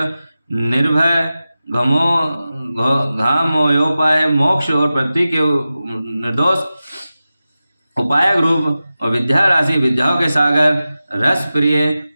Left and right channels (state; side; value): inverted; both; correlation -0.94